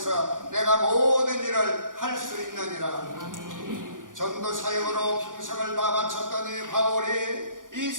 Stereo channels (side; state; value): left; late; 0.88 ms